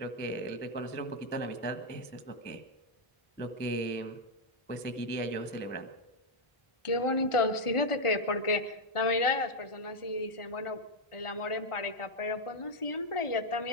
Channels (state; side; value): late; right; 1.4 ms